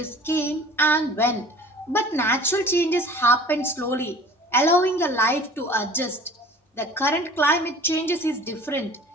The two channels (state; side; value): normal; both; correlation 0.45